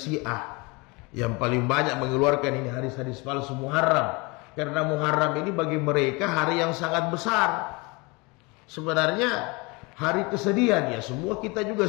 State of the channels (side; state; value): right; quieter; 26.9 dB